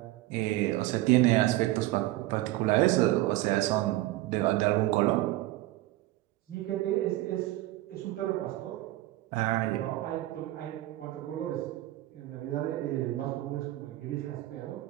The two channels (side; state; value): left; quieter; 16.6 dB